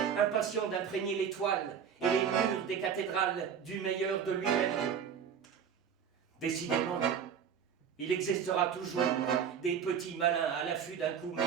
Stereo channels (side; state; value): left; quieter; 7.7 dB